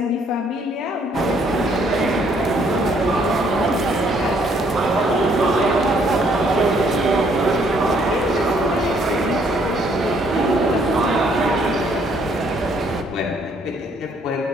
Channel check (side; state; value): both; normal; correlation 0.66